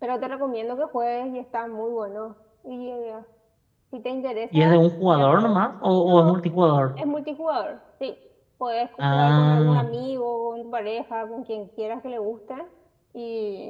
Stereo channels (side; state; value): both; identical; correlation 1.00